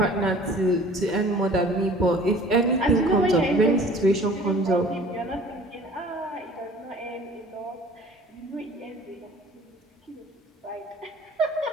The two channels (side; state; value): both; normal; correlation 0.49